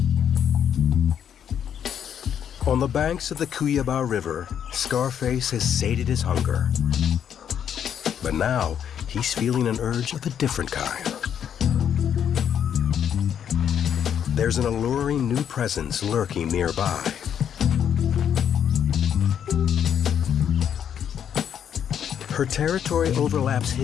On the banks of the Cuyaba River, Scarface has sated his hunger. But now he's feeling an urge of a different kind. There's an alluring new presence lurking nearby. Her territory overlaps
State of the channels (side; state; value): right; quieter; 8.8 dB